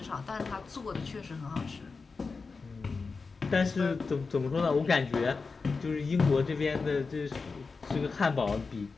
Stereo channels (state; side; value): quieter; right; 4.5 dB